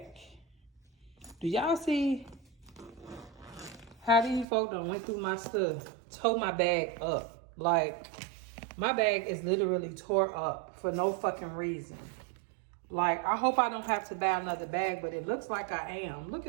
Do y'all see how these folk done went through my stuff? Tore my bag up. Like, my bag is literally tore up for no fucking reason. Like, I hope I don't have to buy another bag, but it looks like I am. Look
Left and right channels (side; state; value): left; drops out; at 4.5 s